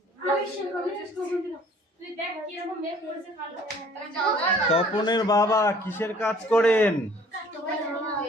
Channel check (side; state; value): both; normal; correlation 0.54